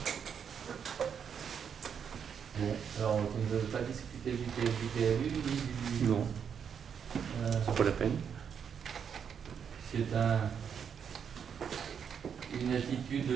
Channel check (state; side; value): quieter; left; 7.4 dB